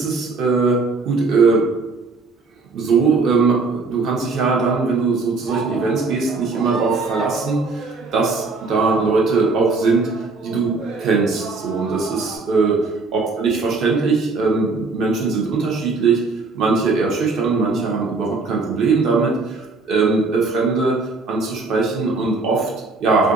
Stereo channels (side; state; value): left; quieter; 3.9 dB